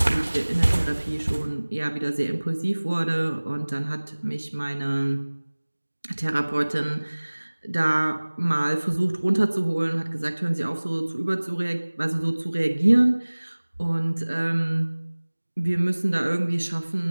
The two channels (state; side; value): inverted; both; correlation -1.00